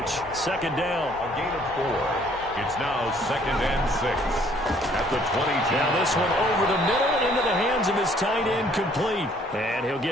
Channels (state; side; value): normal; both; correlation 0.61